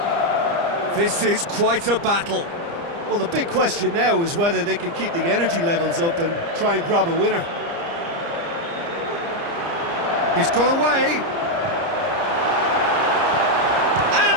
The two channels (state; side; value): late; left; 30 ms